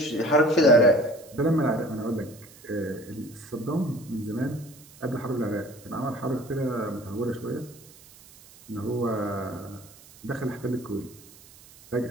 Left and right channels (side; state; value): right; noise; hiss, 22 dB below the sound